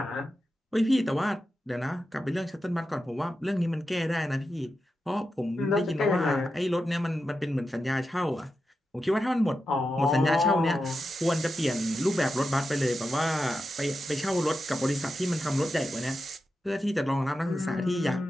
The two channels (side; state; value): both; normal; correlation 0.90